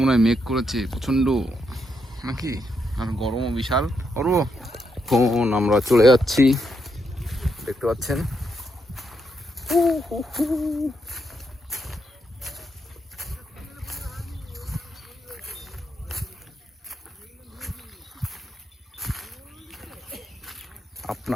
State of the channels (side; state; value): both; normal; correlation 0.79